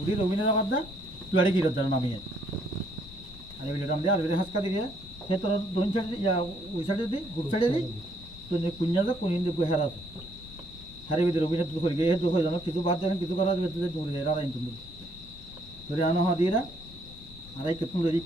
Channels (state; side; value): normal; both; correlation 0.69